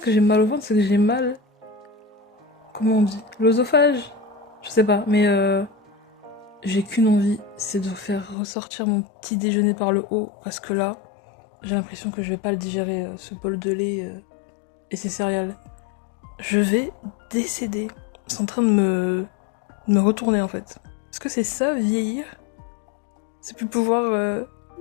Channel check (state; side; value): drops out; right; at 8.3 s